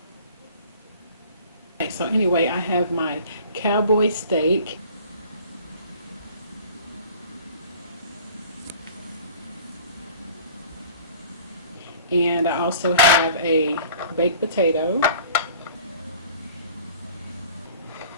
Okay, so anyway, I have my cowboy steak. And I also have a baked potato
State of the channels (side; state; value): both; inverted; correlation -0.48